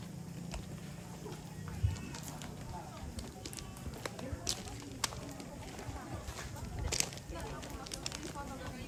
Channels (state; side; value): identical; both; correlation 1.00